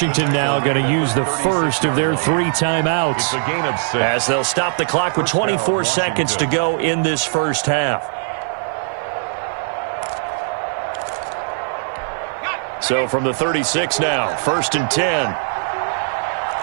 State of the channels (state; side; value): silent; left; 66 dB below the other